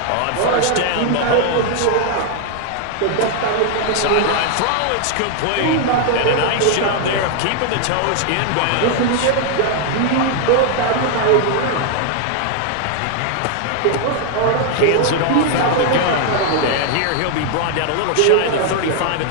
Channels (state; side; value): different; both; correlation 0.00